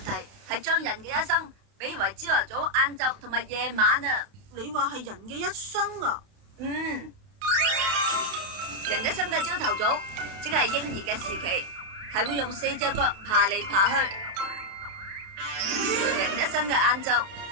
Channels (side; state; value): left; late; 30 ms